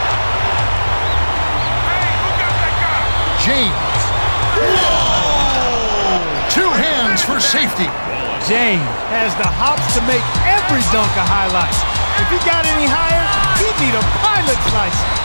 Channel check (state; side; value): inverted; both; correlation -1.00